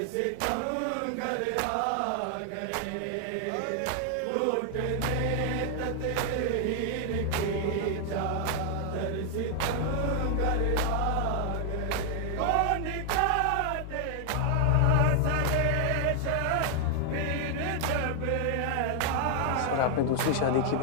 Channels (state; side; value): different; both; correlation 0.00